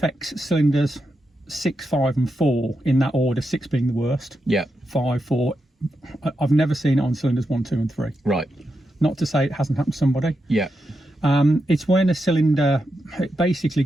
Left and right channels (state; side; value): normal; both; correlation 0.86